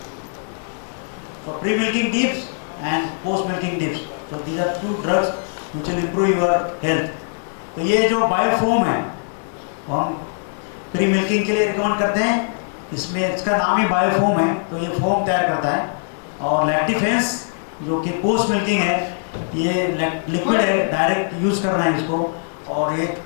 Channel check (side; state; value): right; silent; digital silence